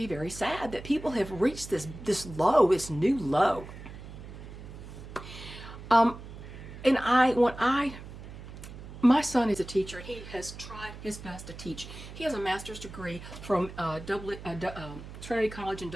very sad that people have reached this new low. My son is a teacher. He has tried his best to teach. He has a master's degree from Trinity College in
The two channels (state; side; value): noise; right; hum, 13 dB below the sound